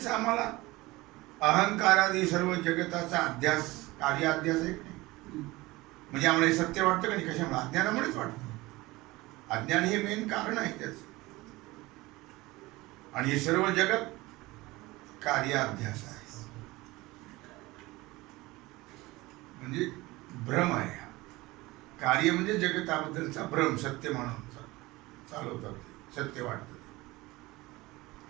आम्हाला अहंकारादी सर्व जगताचा अध्यास, कार्य अध्यास आहे की नाही. म्हणजे आम्हाला हे सत्य वाटतं का नाही, कशामुळे, अज्ञानामुळेच वाटतं. अज्ञान हे मेन कारण आहे त्याच. आणि हे सर्व जगत कार्याध्यास आहे, म्हणजे भ्रम आहे. कार्य म्हणजे जगताबद्दलचा भ्रम, सत्य म्हणून चालवतात, सत्य वाटतं.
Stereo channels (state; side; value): quieter; left; 20.5 dB